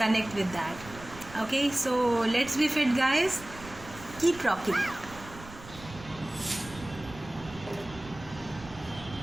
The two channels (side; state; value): right; noise; rumble, 16 dB below the sound